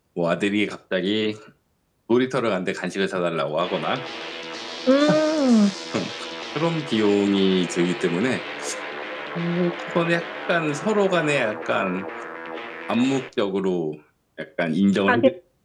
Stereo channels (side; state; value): both; identical; correlation 1.00